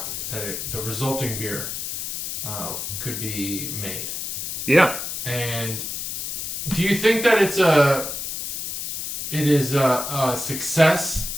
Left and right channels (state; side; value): noise; left; hiss, 4 dB below the sound